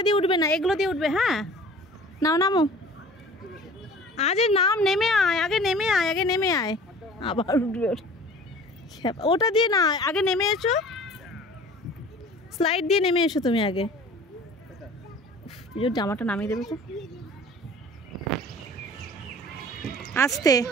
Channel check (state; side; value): normal; both; correlation 0.45